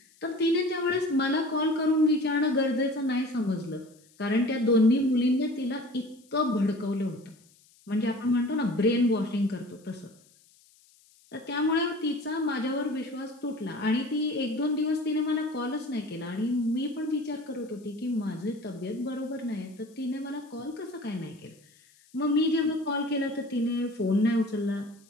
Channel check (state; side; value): noise; left; hiss, 30 dB below the sound